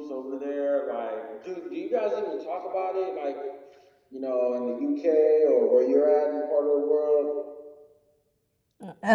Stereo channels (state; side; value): identical; both; correlation 1.00